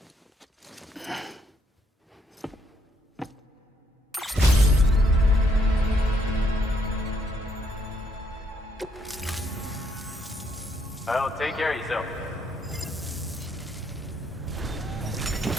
Well, take care of yourself.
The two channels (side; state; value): both; normal; correlation 0.72